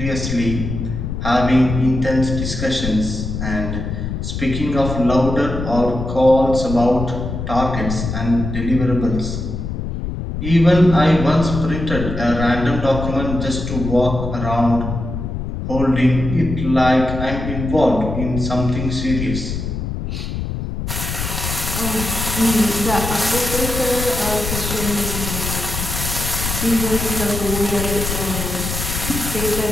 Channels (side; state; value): left; noise; rumble, 5 dB below the sound